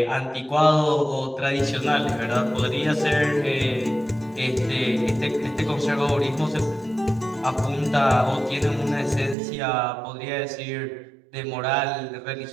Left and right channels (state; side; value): drops out; left; at 9.3 s